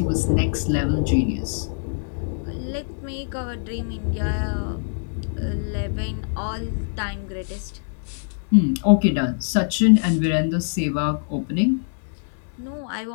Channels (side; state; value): right; silent; 63 dB below the other